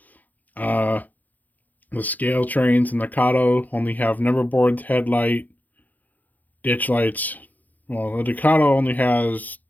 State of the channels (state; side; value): late; right; 0.082 ms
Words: Uh, the Scale Trains and the Kato only have number boards, headlight, ditch lights. Well, the Ducato only has